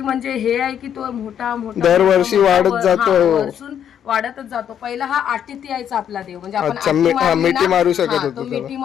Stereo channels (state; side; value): quieter; right; 9.2 dB